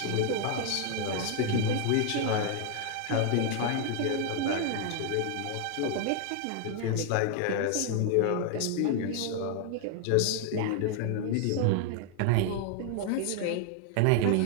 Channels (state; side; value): different; both; correlation 0.00